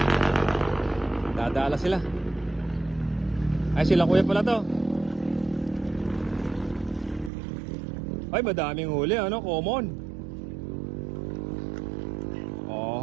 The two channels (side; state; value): left; drops out; at 7.3 s